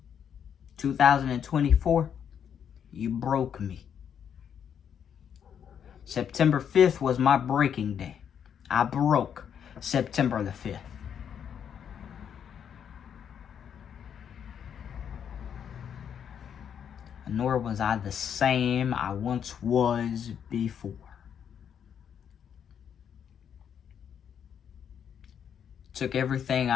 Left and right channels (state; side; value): quieter; right; 8.3 dB